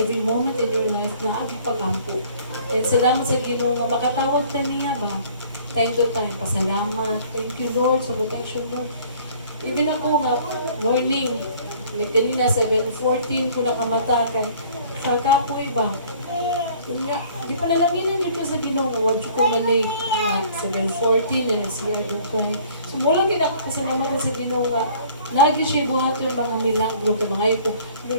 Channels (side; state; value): both; inverted; correlation -0.53